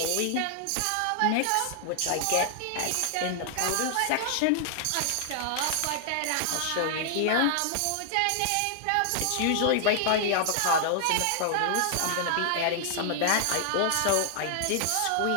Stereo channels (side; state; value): both; different; correlation -0.01